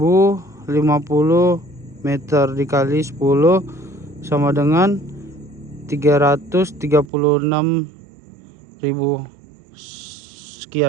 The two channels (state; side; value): drops out; left; at 7.1 s